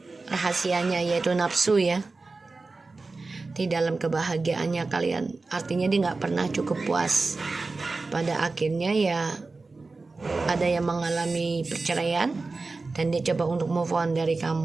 rahasianya, yaitu nafsu ya, di dalam kebahagiaannya kalian. Artinya dia gak pernah cukup puas. Pada akhirnya ya ada yang mengalami perceraian, dan dia coba untuk move on dari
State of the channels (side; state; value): left; quieter; 3.7 dB